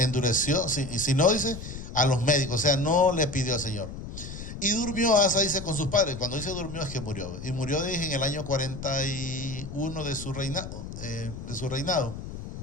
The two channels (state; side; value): noise; left; rumble, 10 dB below the sound